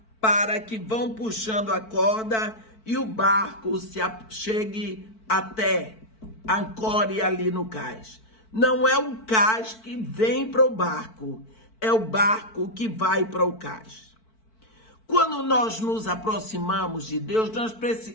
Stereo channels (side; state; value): right; late; 4.5 ms